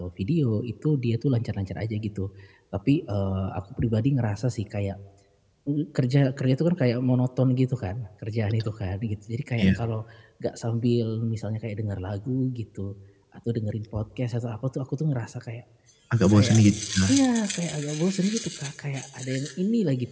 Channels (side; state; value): both; identical; correlation 1.00